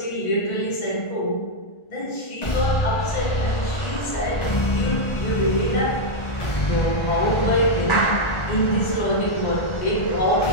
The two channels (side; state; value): right; late; 1.3 ms